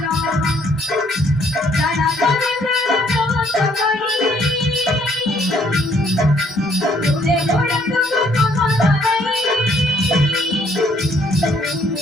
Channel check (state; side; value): normal; both; correlation 0.66